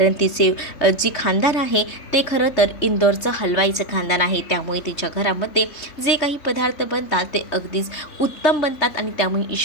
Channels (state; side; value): late; right; 3.3 ms